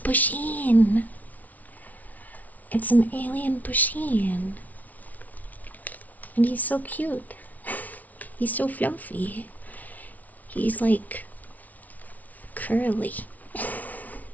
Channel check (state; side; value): late; right; 0.074 ms